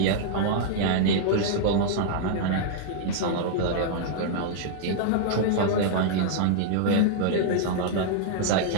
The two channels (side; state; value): both; different; correlation -0.01